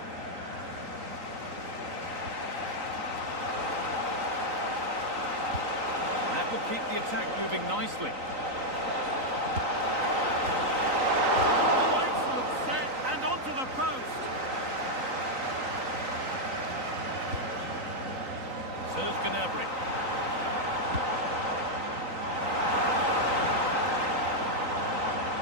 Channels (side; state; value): left; late; 3.9 ms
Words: That will keep the attack moving nicely. Oh, excellent set, and onto the post. Serge Gnabry.